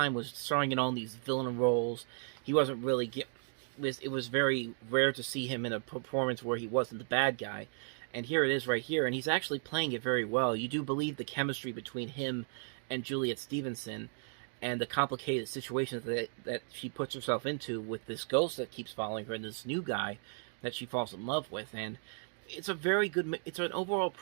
was starring in all these villain roles. He wasn't really it was very rare to see him in a performance where he wasn't the bad guy. And here it is right here, and he's actually playing it very well. You do believe the chemistry between him and Juliet Stevenson, and the complicated situations that she puts herself into with this ghost that keeps following her and this new guy that she falls in love with. And it's an overall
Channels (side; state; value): left; silent; 54 dB below the other